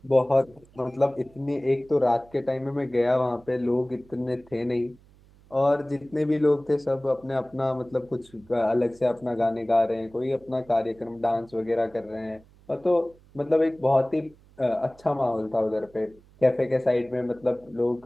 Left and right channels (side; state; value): right; noise; hum, 27 dB below the sound